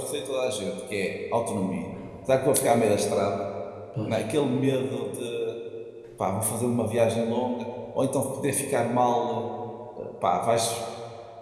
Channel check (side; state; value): both; identical; correlation 1.00